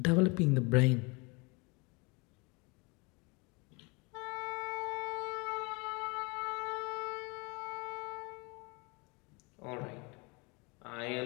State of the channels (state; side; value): quieter; right; 28.9 dB